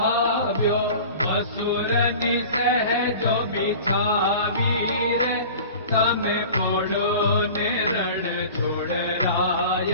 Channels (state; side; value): inverted; both; correlation -0.39